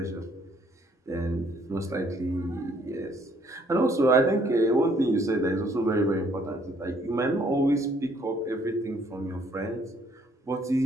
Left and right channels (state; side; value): normal; both; correlation 0.64